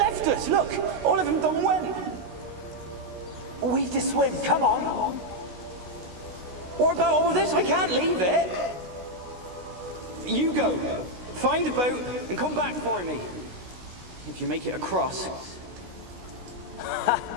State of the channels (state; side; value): late; left; 16 ms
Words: us, look! All of them done went! We've to swim, come on! What about all this? I can't leave it! You go! Find a boat and come back for me. If you make it across.